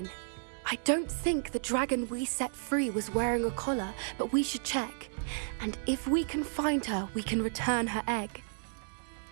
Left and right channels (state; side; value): silent; left; 56 dB below the other